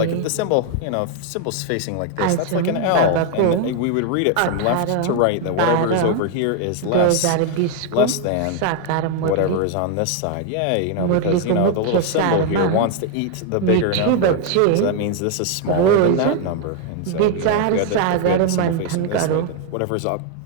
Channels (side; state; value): both; different; correlation 0.01